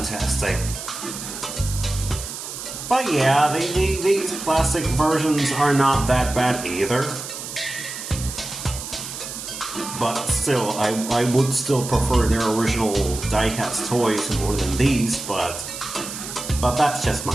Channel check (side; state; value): right; noise; hiss, 9 dB below the sound